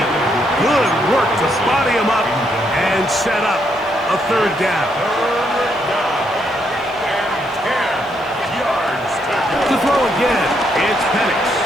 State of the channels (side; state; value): left; noise; hiss, 29 dB below the sound